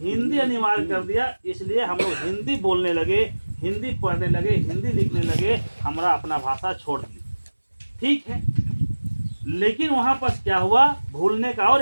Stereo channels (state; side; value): inverted; both; correlation -1.00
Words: अनिवार्य कर दिया। इसलिए हम लोग हिंदी बोलने लगे, हिंदी पढ़ने लगे, हिंदी लिखने लगे, हमारा अपना भाषा छोड़ दी। ठीक है, लेकिन वहाँ पर क्या हुआ? भूलने का और